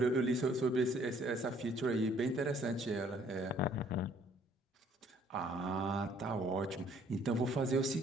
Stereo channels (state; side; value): normal; both; correlation 0.61